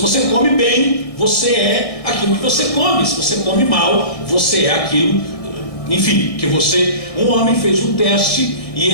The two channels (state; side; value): late; right; 1.7 ms